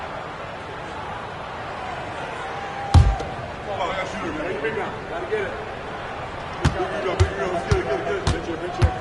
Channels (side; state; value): both; identical; correlation 1.00